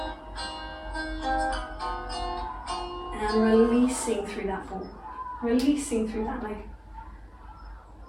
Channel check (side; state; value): both; identical; correlation 1.00